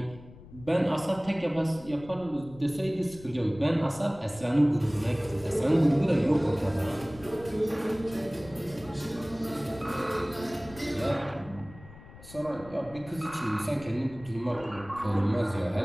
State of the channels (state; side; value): noise; left; rumble, 19 dB below the sound